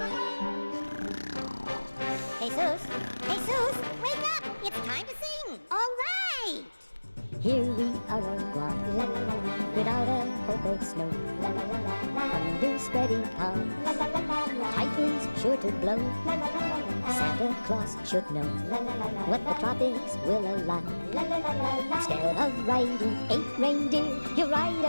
Jesus, wake up! It's time to sing. All right. Here we are on Guam, la la la la, without a hope of snow, la la la la la, under spreading calms, la la la la la, typhoons sure to blow, la la la la la, Santa Claus should know, la la la la, what the tropics will allow, la la la la la. Instead of riding 8 reindeer, you ride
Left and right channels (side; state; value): both; inverted; correlation -1.00